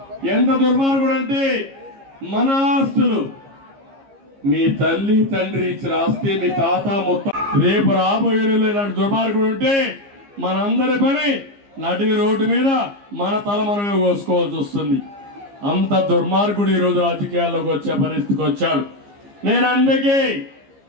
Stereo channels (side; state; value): left; late; 15 ms